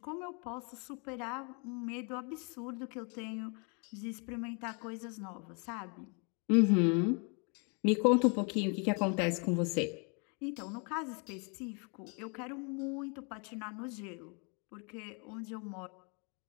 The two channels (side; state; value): right; quieter; 35.8 dB